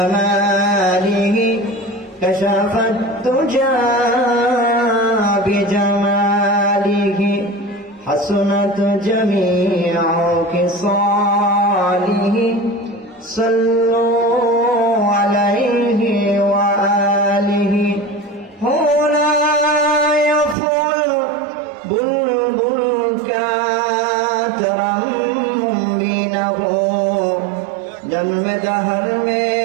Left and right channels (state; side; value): drops out; left; at 20.6 s